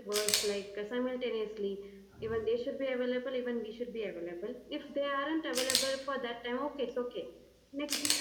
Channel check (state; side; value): identical; both; correlation 1.00